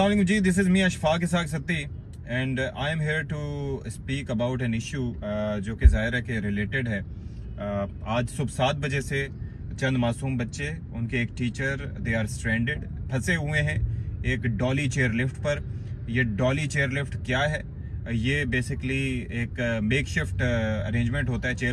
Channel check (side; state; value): both; identical; correlation 1.00